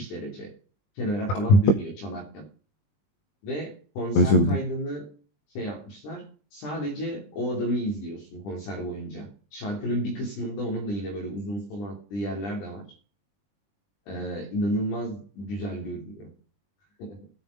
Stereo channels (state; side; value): late; right; 20 ms